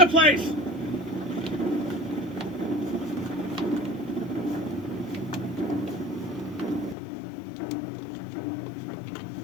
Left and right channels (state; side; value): drops out; right; at 7.0 s